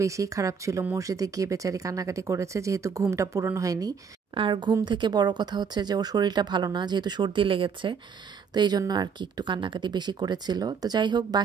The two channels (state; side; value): quieter; left; 6.3 dB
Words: বেশি খারাপ ছিল, মসজিদে গিয়ে বেচারি কান্নাকাটি করেছে যেহেতু ঘুমটা পূরণ হয়নি। আর ঘুম থেকে বড় কথা হচ্ছে যে ওর শরীরটা ভালো না, যেহেতু সর্দি লেগেছে, তো এই জন্য আর কি একটু কান্নাকাটি বেশি করেছিল। তো যাই হোক